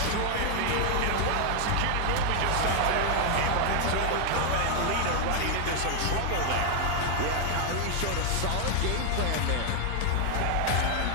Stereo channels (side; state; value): both; different; correlation 0.00